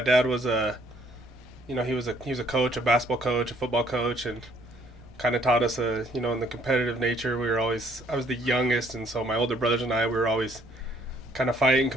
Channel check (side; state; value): right; noise; rumble, 24 dB below the sound